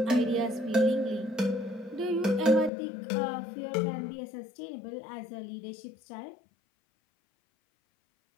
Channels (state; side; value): drops out; right; at 2.7 s